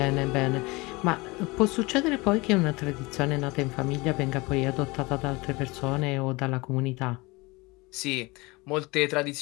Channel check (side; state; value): right; quieter; 24.1 dB